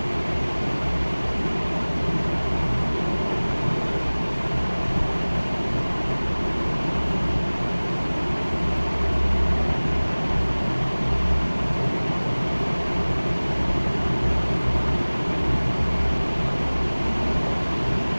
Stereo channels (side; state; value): both; inverted; correlation -1.00